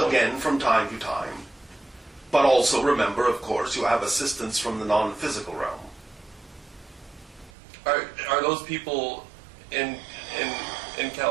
from time to time. But also remember, of course, you have assistance from the non-physical realm. Are those people in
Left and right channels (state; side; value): drops out; left; at 7.5 s